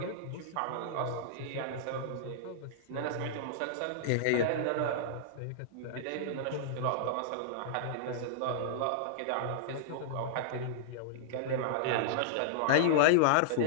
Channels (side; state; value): both; different; correlation -0.02